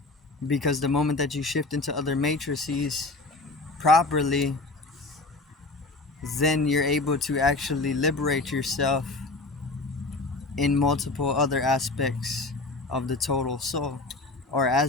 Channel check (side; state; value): right; quieter; 3.3 dB